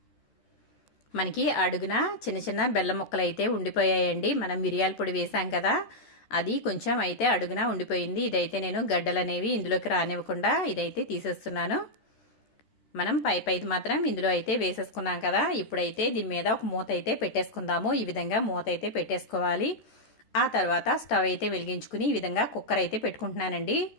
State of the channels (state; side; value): late; right; 13 ms